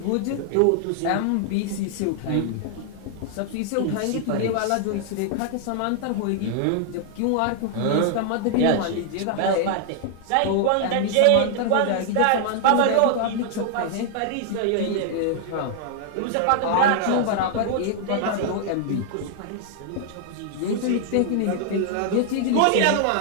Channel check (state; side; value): different; both; correlation 0.00